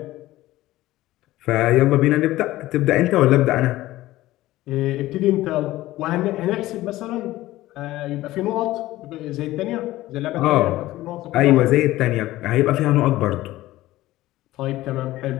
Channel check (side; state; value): right; quieter; 16.5 dB